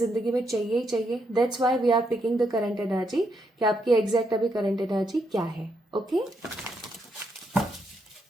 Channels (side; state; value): both; normal; correlation 0.78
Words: में चाहिए ही चाहिए. That's why we are picking the current energy, कि आपकी एग्जैक्ट अभी करंट एनर्जी क्या है. ओके